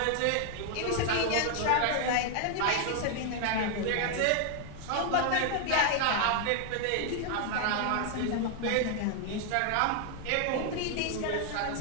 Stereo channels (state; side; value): different; both; correlation 0.00